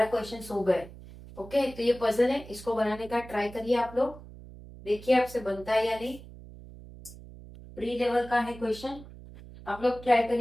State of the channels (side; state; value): right; noise; hum, 17 dB below the sound